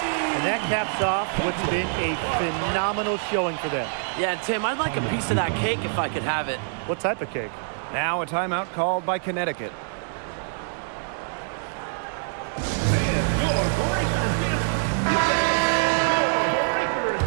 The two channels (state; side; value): silent; left; digital silence